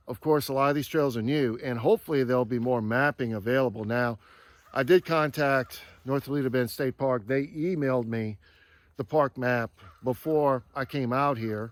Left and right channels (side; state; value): both; identical; correlation 1.00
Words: Of course, a lot of these trails are new, and hopefully there'll be more mapping available. Now, I did contact North Toledo Bend State Park. They emailed me the park map before I came out